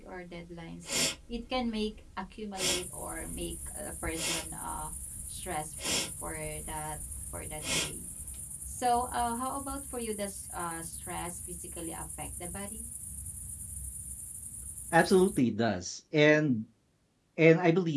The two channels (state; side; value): identical; both; correlation 1.00